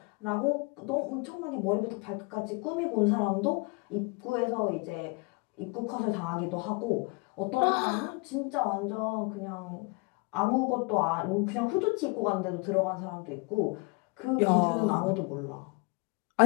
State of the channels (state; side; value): quieter; right; 29.8 dB